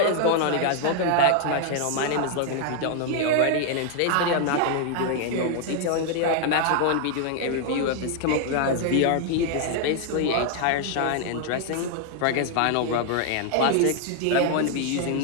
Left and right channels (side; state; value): both; different; correlation 0.00